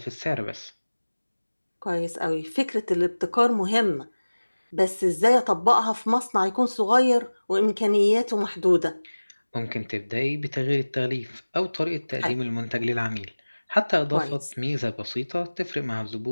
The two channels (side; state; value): both; inverted; correlation -1.00